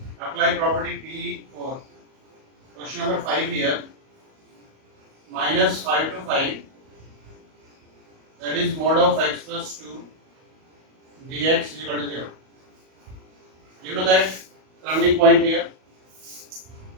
apply property P for question number 5 here, minus 5 to 5, that is mod of x plus 2 dx is equal to 0. You know that turning point here,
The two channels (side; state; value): left; late; 38 ms